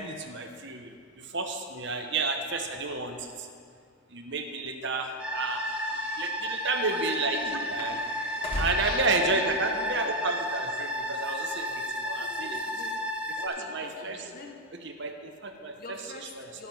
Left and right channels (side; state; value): both; normal; correlation 0.04